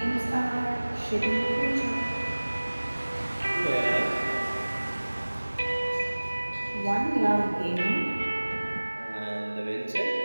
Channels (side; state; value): both; inverted; correlation -1.00